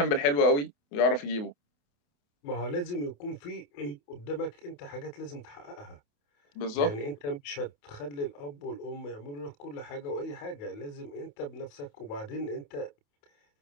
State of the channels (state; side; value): late; right; 28 ms